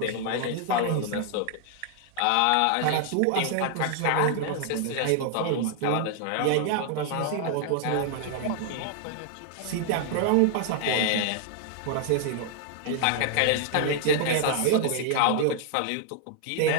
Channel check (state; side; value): different; both; correlation 0.00